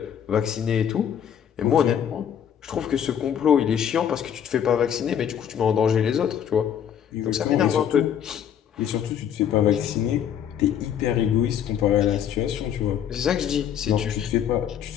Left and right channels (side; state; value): right; quieter; 9.1 dB